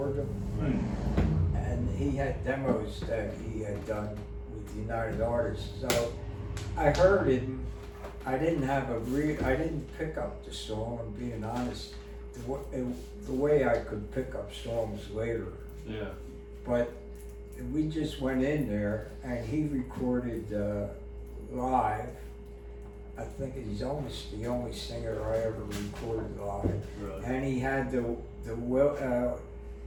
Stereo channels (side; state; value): both; identical; correlation 1.00